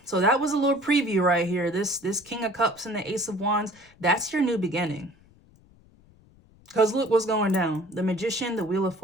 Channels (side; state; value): left; noise; rumble, 28 dB below the sound